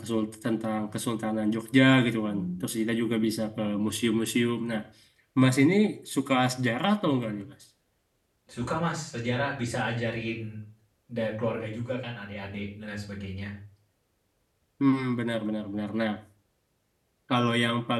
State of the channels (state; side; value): identical; both; correlation 1.00